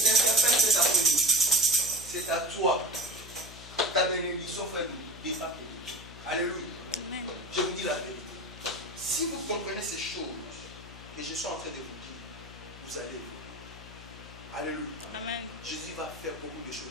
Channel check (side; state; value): left; noise; hum, 16 dB below the sound